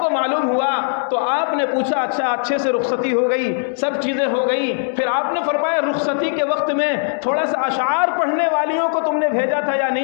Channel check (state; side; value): silent; right; digital silence